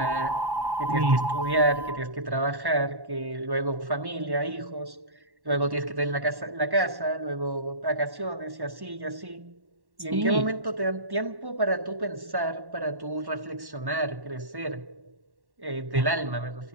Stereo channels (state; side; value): late; left; 1.1 ms